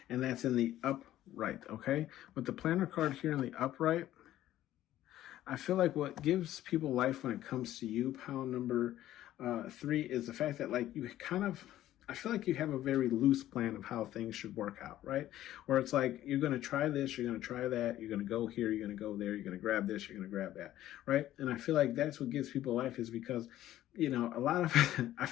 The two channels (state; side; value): quieter; right; 13.5 dB